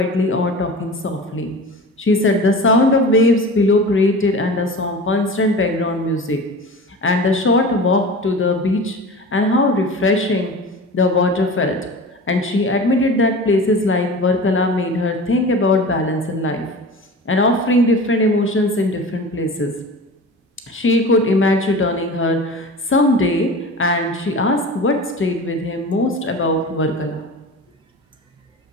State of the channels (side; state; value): both; normal; correlation 0.35